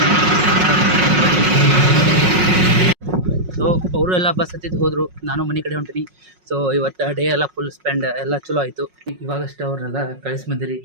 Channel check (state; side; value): late; left; 5.5 ms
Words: ಸೊ ಅವರು ಎಲ್ಲ ಬಸ್ ಹತ್ತಿದ್ದು ಹೋದರು, ನಾನು ಮನೆ ಕಡೆ ಹೊಂಟೀನಿ. ಸೊ ಇವತ್ತು ಡೇ ಎಲ್ಲ ಫುಲ್ ಸ್ಪೆಂಡ್ ಎಲ್ಲ ಚಲೋ ಆಯಿತು. ಇವಾಗಷ್ಟು ಅವ್ರನ್ನೆಲ್ಲ ಕಳಿಸಿ ಬಂದಿರಿ